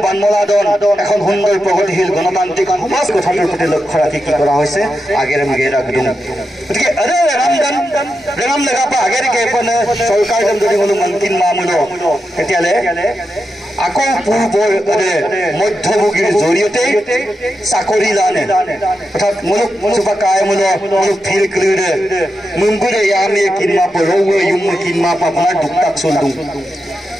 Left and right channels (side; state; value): both; normal; correlation 0.88